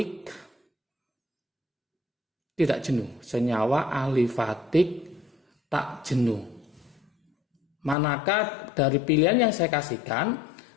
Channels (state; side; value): drops out; right; at 8.0 s